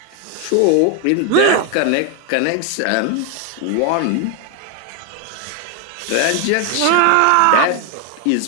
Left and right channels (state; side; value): different; both; correlation 0.01